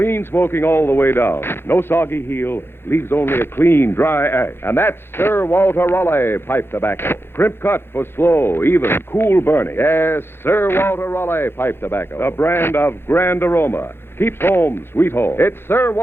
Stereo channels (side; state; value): right; late; 0.11 ms